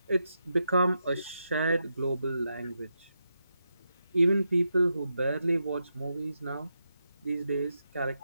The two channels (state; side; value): inverted; both; correlation -0.85